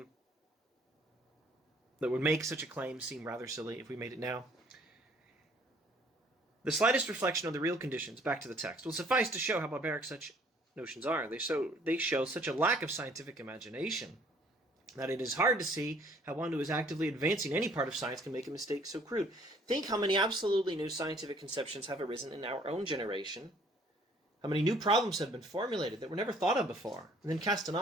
that would make such a claim seem rather silly if we made it now? The slightest reflection on the real conditions, back to the text, will suffice to show how barbaric such notions are. They show such a lack of scientific imagination that it is hard to see how one who is actively advancing any part of science can make a mistake so crude. Think how many absolutely new scientific conceptions have arisen in our own generation, how many new problems have been formulated that were never thought of before, and then cast an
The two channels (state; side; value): normal; both; correlation 0.59